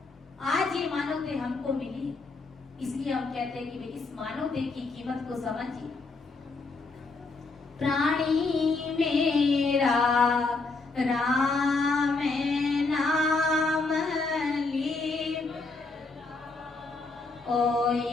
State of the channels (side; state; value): right; quieter; 3.7 dB